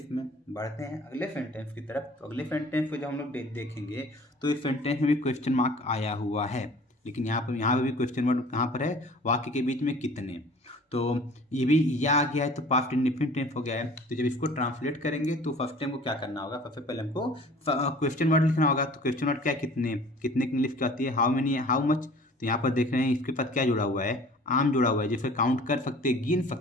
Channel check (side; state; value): both; normal; correlation 0.47